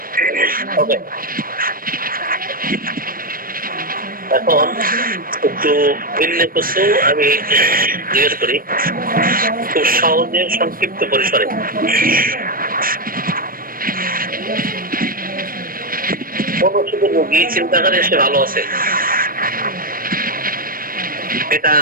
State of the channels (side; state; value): left; late; 0.41 ms